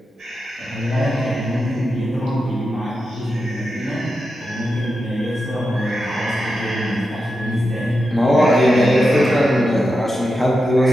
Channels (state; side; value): normal; both; correlation 0.89